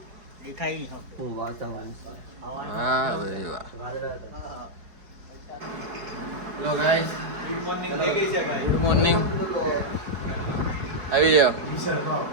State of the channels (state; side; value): late; left; 4.7 ms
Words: હું વાતાવરણ વાહ ભાઈ વાહ. હેલો ગાઈસ, ગુડ મોર્નિંગ થઈ ગઈ છે ભાઈ. Good morning. આવી જાઓ.